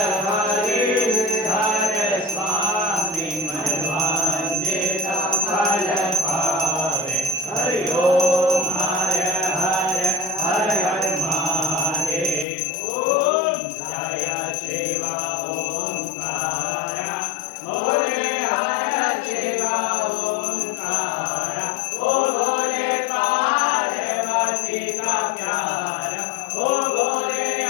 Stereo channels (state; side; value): drops out; right; at 12.5 s